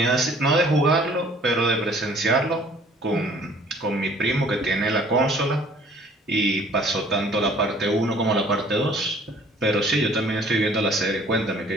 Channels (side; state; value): both; normal; correlation 0.55